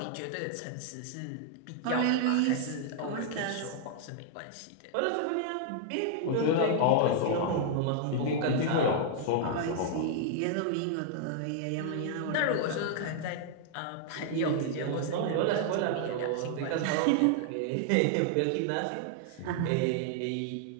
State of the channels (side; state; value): both; different; correlation -0.01